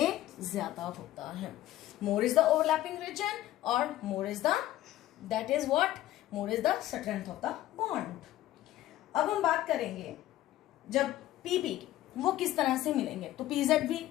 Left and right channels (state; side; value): quieter; right; 14.3 dB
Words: ज्यादा होता है। More is the overlapping region और more is the, that is what, more is the strength of the bond. अब हम बात करेंगे जब PP वो किस तरह से मिलेंगे, तो PZ भी